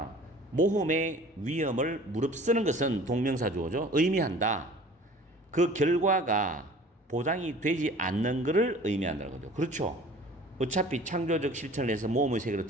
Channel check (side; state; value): both; normal; correlation 0.47